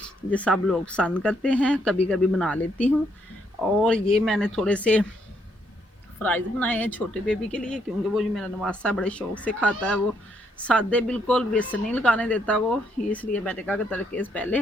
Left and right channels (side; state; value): both; normal; correlation 0.74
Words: ये सब लोग पसंद करते हैं। कभी कभी बना लेती हूँ। और ये मैंने थोड़े से फ्राइज़ बनाए हैं छोटे बेबी के लिए, क्योंकि वो जो मेरा नवासा बड़े शौक से खाता है। वो सादे बिल्कुल बेसन नहीं लगाने देता वो, इसलिए मैंने कहा कि तड़के से पहले